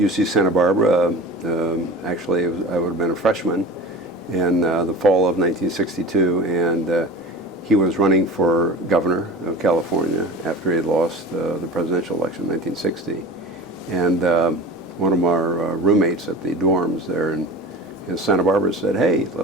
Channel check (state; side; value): normal; both; correlation 0.34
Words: Santa Barbara. Actually, I would have been a freshman in the fall of 1962, and he was running for governor of California after he had lost the presidential election in 1960. And one of our roommates at the dorms there in Santa Barbara said, "Hey,